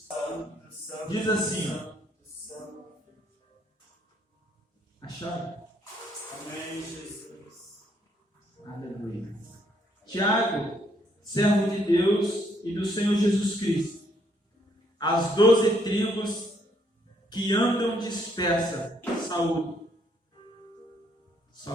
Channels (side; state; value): both; normal; correlation 0.70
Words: Diz assim: acharam? Amém, Jesus. Aleluia. Tiago, servo de Deus e do Senhor Jesus Cristo, as 12 tribos que andam dispersas, saúde.